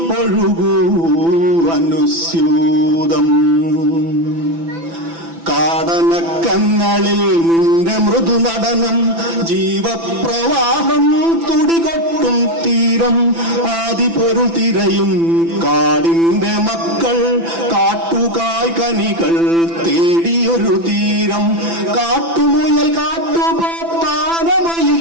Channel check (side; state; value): left; late; 6.0 ms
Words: ഒഴുകൂ അനുസ്യൂതം. കാടനക്കങ്ങളിൽ നിന്റെ മൃദുനടനം, ജീവപ്രവാഹം തുടികൊട്ടും തീരം. ആദിപൊരുൾ തിരയും കാടിന്റെ മക്കൾ, കാട്ടുകായ് കനികൾ തേടിയൊരു തീരം. കാട്ടുമുയൽ കാട്ടുപോത്താനമയിൽ